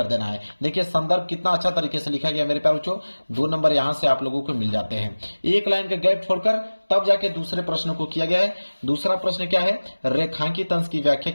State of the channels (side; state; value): both; inverted; correlation -1.00